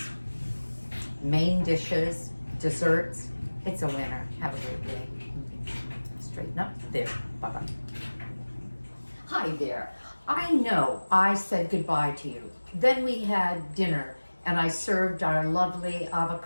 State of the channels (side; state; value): both; inverted; correlation -1.00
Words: main dishes, desserts, it's a winner. Have a great day. Straighten up. There. Bye-bye. Hi there. I know I said goodbye to you. Then we had dinner and I served our lovely